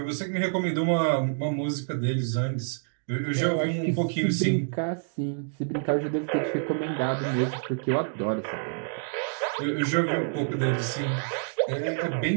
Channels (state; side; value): silent; left; digital silence